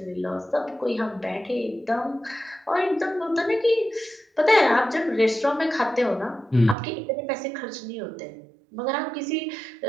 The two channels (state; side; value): drops out; left; at 6.8 s